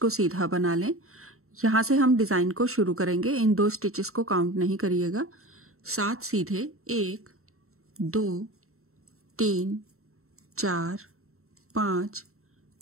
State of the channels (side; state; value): left; late; 0.63 ms